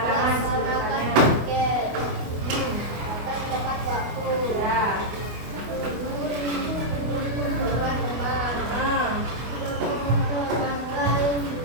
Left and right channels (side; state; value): left; late; 24 ms